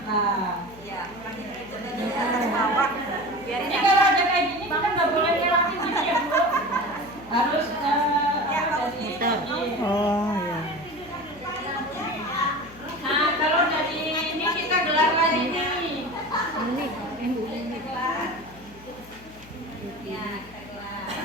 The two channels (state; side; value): noise; left; hum, 22 dB below the sound